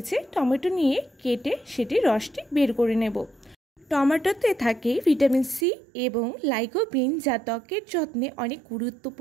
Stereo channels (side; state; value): left; drops out; at 5.7 s